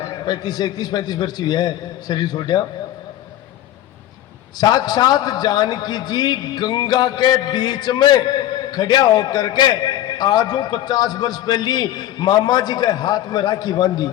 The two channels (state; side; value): quieter; right; 12.9 dB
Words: 35 वर्ष हुआ है शरीर छोड़ा। साक्षात जानकी जी गंगा के बीच में खड़ा होकर के आज 50 वर्ष पहली मामा जी के हाथ में राखी बांधी।